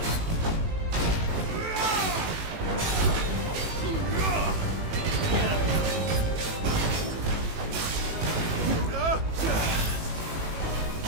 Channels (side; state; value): left; late; 18 ms